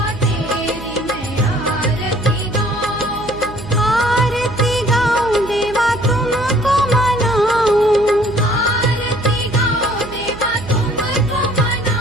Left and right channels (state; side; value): noise; right; hum, 14 dB below the sound